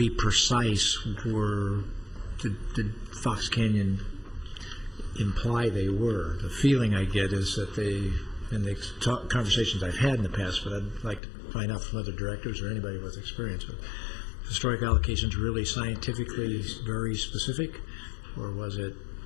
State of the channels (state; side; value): drops out; right; at 11.2 s